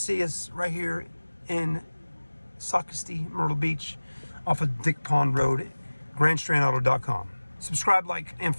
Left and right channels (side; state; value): both; inverted; correlation -1.00